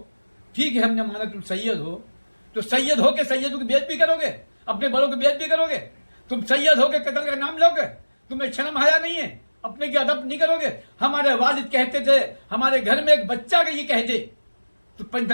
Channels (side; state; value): both; inverted; correlation -1.00